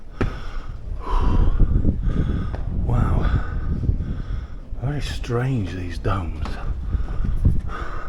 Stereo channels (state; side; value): identical; both; correlation 1.00